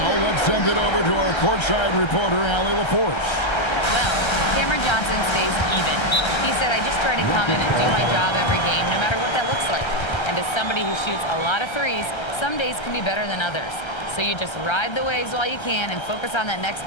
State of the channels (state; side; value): late; right; 1.3 ms